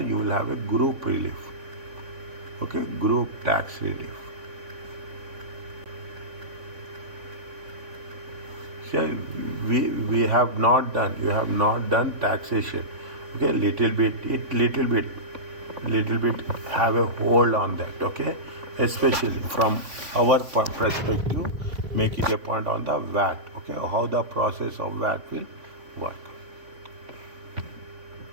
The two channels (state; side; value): late; left; 3.5 ms